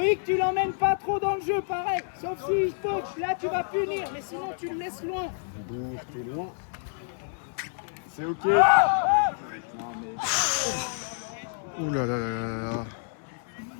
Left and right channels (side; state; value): right; silent; 59 dB below the other